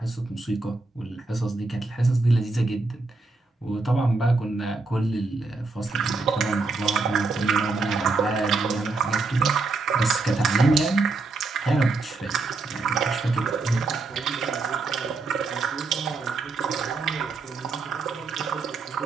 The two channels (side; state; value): left; quieter; 3.7 dB